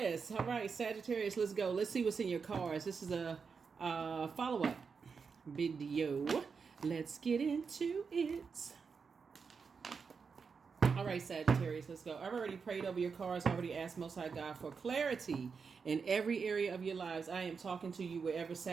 All right, Sagittarius, let's go. Let's see what's in your cards. This is a follow-up video. Let's get into it. All right, Sagittarius, let's go. I've already prayed over your cards. I already asked Most High God for clarity in every area of your lives. I am talking to you wherever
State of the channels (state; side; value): quieter; left; 5.5 dB